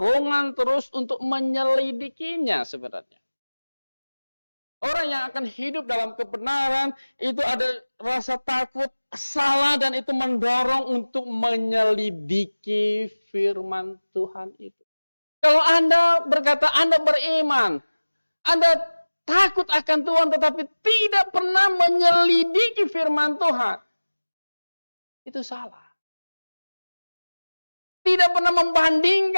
terus untuk menyelidikinya sebenarnya. Orang yang akan hidup dalam kebenaran itu ada rasa takut salah dan itu mendorong untuk menyelidiki firman Tuhan itu. Kalau Anda berkata Anda beriman, Anda takut akan Tuhan tetapi tidak pernah menyelidiki firman Tuhan, itu salah. Tidak pernah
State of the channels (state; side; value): inverted; both; correlation -1.00